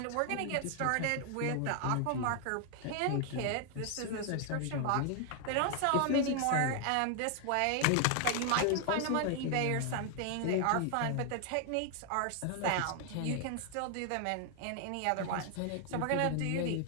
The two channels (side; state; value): both; different; correlation 0.00